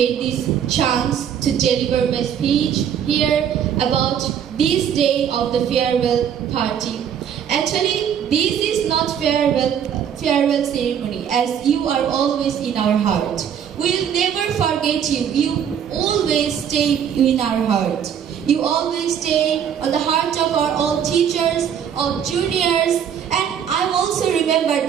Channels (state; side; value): quieter; left; 8.6 dB